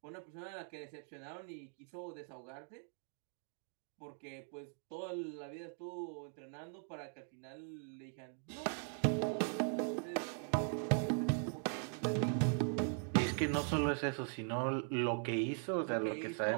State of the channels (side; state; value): left; silent; 51 dB below the other